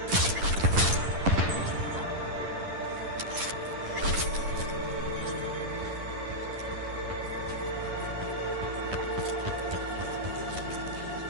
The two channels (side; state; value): left; late; 10 ms